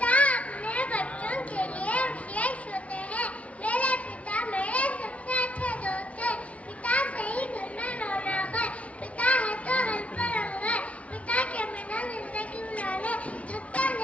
अपने बच्चों के लिए विशेष होते हैं। मेरे पिता मेरे सबसे अच्छे दोस्त हैं। पिता से ही घर में रौनक है। पिता है तो हर पर रंग है। पिता के बिना जिंदगी गुजारने थकता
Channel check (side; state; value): right; late; 0.065 ms